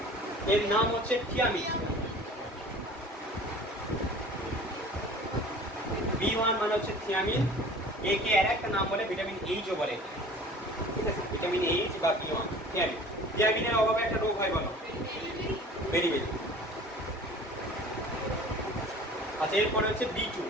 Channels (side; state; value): both; normal; correlation 0.44